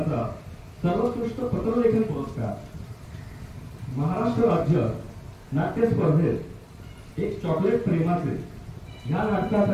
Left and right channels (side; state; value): both; identical; correlation 1.00